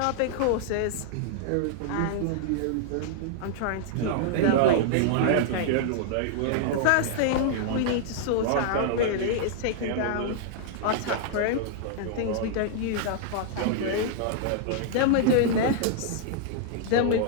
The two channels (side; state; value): both; different; correlation -0.01